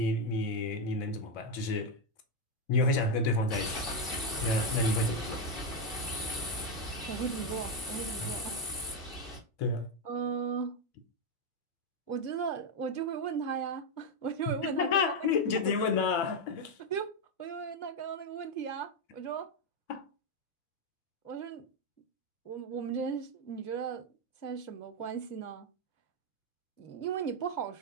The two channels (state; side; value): late; right; 2.6 ms